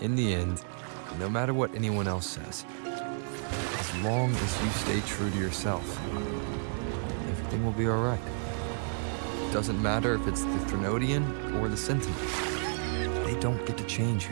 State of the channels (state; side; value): silent; left; digital silence